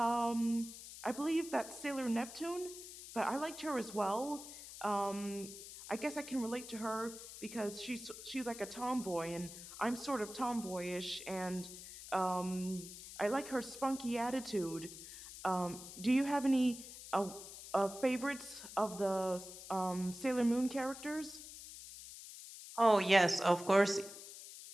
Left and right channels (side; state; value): left; noise; hiss, 13 dB below the sound